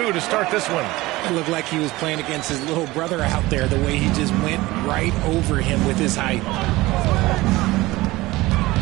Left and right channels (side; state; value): left; quieter; 19.6 dB